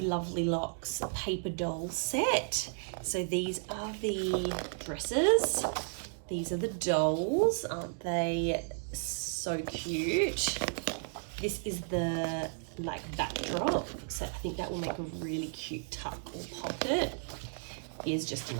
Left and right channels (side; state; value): left; silent; 55 dB below the other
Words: Lovely Locks paper doll set. So these are the dresses. These are the dolls. Aren't they so cute? This is the like backdrop. So I think that will make a really cute tuck or pocket. Here's just